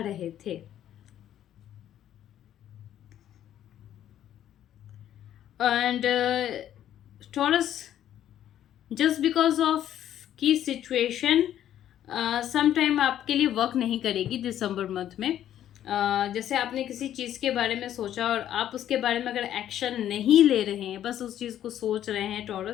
थे। And taurus, just because of की सिचुएशन समटाइम आपके लिए वर्क नहीं करेगी दिसंबर मंथ में। जैसे आपने किसी चीज़ के बारे में सोचा और आप उसके बारे में अगर एक्शन नहीं ले रहे हैं, बस उस चीज़ को सोच रहे हैं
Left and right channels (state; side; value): quieter; right; 11.2 dB